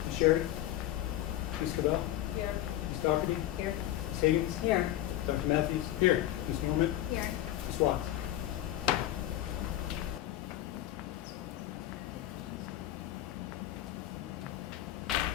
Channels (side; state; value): right; quieter; 13.8 dB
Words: Sherry? Ms. Cabell? Here. Ms. Doherty? Here. Ms. Higgins? Here. Dr. Matthews? Here. Ms. Norman? Here. Ms. Watts?